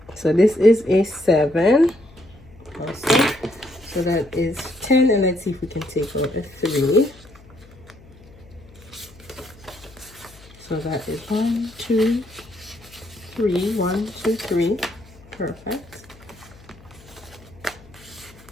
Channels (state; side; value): noise; left; hum, 23 dB below the sound